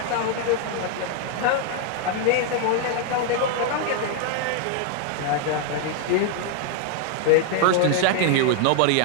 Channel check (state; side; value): different; both; correlation 0.00